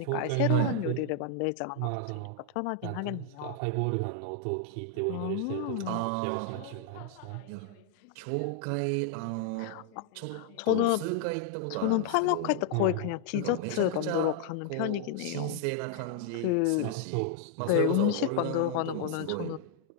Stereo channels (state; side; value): different; both; correlation 0.00